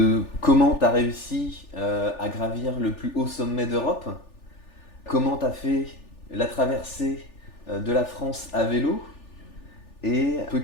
comment tu as réussi à gravir le plus haut sommet d'Europe, comment tu as fait la traversée de la France à vélo et un peu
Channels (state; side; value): late; right; 3.4 ms